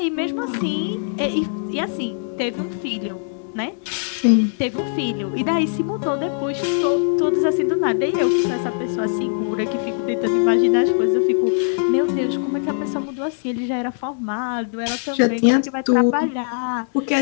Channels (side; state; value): right; silent; digital silence